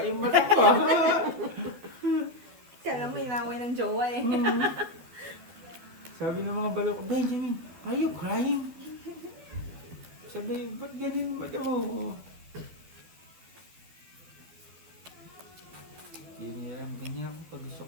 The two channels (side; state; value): left; late; 12 ms